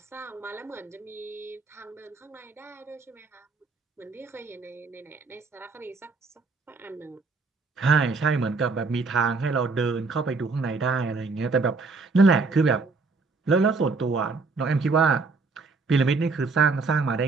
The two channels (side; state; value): left; quieter; 4.1 dB